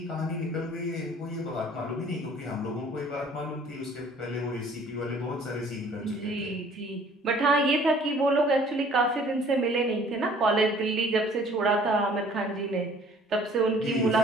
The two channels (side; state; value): both; normal; correlation 0.54